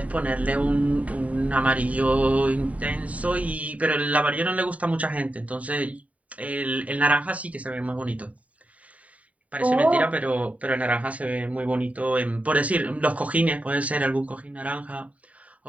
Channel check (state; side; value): late; left; 0.068 ms